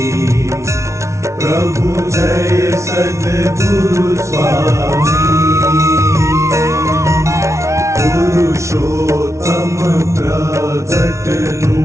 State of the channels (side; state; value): left; late; 0.14 ms